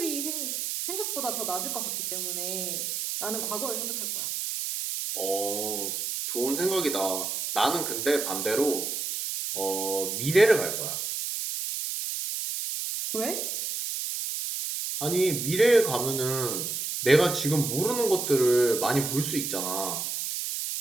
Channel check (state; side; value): noise; right; hiss, 3 dB below the sound